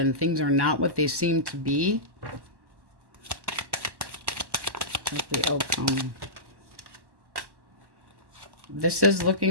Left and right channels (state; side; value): late; left; 1.1 ms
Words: Things are not what they seem to be. What's the outcome? This is